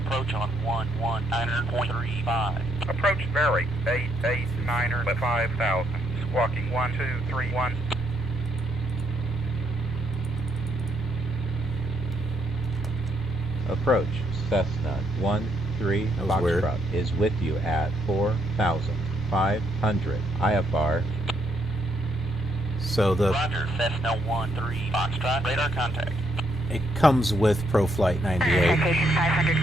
on 119.35. Approach Berry, 889er at 5,000. Squawking 1231. Approach Cessna 13 Foxtrot is with you at 4,500 IFR. So the Roger, Cessna 13 Foxtrot, radar contact. It comes with ProFlight 98. Citation 500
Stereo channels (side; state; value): both; normal; correlation 0.75